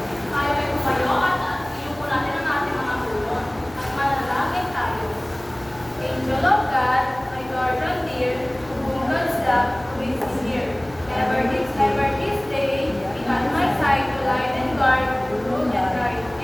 Tayo ay tumayo at iyuko natin ang ating mga ulo at manalangin tayo. Angel of God, my guardian dear, to whom God's love is here. Ever this day, be at my side to light and guard, rule and guide.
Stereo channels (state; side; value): noise; left; hum, 21 dB below the sound